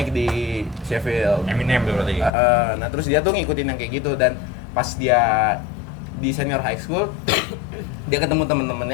di Sheffield. Eminem tuh berarti. Nah terus dia tuh ngikutin yang kayak gitu, dan pas dia di senior high school dia ketemu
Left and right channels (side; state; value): right; drops out; at 2.3 s